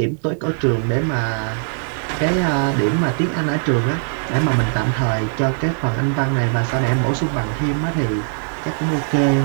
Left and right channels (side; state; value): left; silent; 63 dB below the other